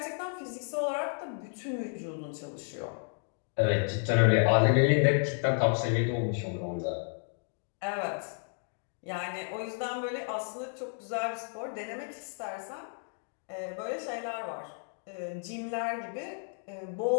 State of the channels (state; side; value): silent; right; 56 dB below the other